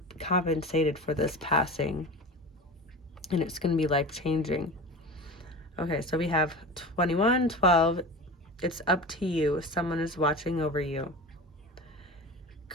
compensated for this passing, and it's going to be life-changing. Okay, so we have 2112. It's up to you. Someone is watching over you.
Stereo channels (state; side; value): normal; both; correlation 0.31